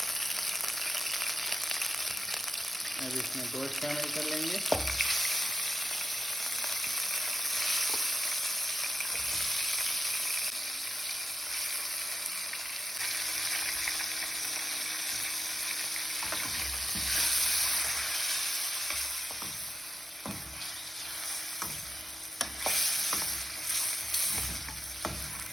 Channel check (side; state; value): both; normal; correlation 0.90